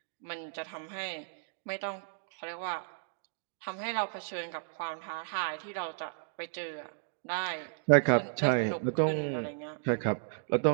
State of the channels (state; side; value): silent; left; digital silence